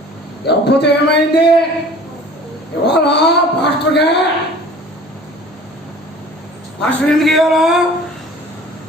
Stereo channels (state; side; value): normal; both; correlation 0.46